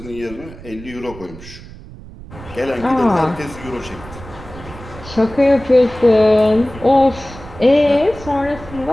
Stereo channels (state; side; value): noise; right; rumble, 16 dB below the sound